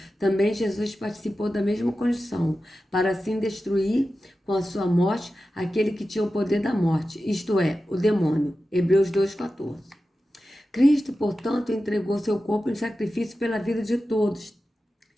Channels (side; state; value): both; normal; correlation 0.93